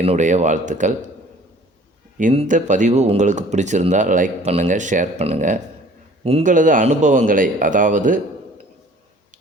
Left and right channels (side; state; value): both; normal; correlation 0.51